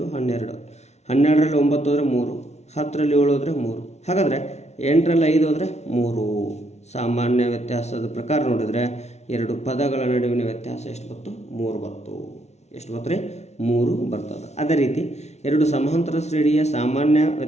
12. 12ರಲ್ಲಿ 9 ಹೋದರೆ 3, 10ರಲ್ಲಿ 7 ಹೋದರೆ 3. ಹಾಗಾದರೆ 8ರಲ್ಲಿ 5 ಹೋದರೆ 3. ಸಾಮಾನ್ಯ ವ್ಯತ್ಯಾಸದ ಪ್ರಕಾರ ನೋಡಿದರೆ 2 ಪದಗಳ ನಡುವಿನ ವ್ಯತ್ಯಾಸ ಎಷ್ಟು ಬಂತು? 3 ಬಂತು. ಎಷ್ಟು ಬಂತು ರೀ? 3 ಬರ್ತದೆ. ಅದೇ ರೀತಿ 2 ಸಮಾಂತರ ಶ್ರೇಣಿಯ ಸಾಮಾನ್ಯ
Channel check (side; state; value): right; late; 0.32 ms